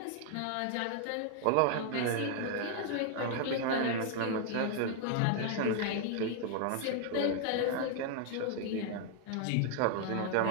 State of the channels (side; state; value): both; different; correlation 0.00